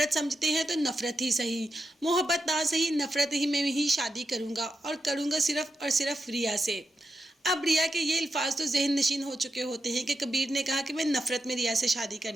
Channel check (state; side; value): normal; both; correlation 0.86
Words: समझते हैं तो नफरत ही सही, मोहब्बत ना सही, नफरत ही में ही शादी करूँगा और करूँगा सिर्फ और सिर्फ रिया से। अब रिया के ये अल्फाज तो जहन नशीन हो चुके होते हैं कि कबीर ने कहा कि मैं नफरत में रिया से शादी